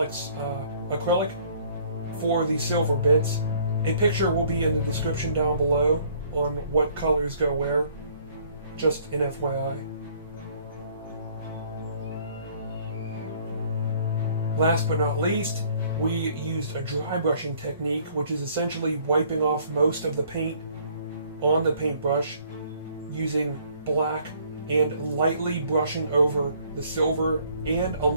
acrylic for the silver bits. A picture will be in the description down below on what colors go where, just an FYI. Last but not least, we used a dry brushing technique, which is essentially wiping off most of the paint on the paintbrush using black and lightly brushing over the silver and a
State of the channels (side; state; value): both; inverted; correlation -0.60